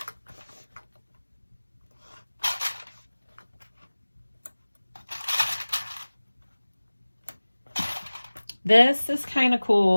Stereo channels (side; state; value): both; inverted; correlation -1.00